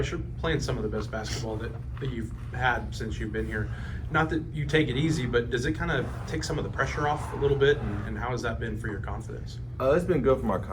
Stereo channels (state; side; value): identical; both; correlation 1.00